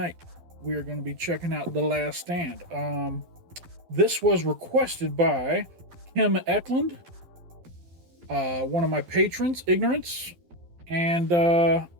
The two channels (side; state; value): left; late; 12 ms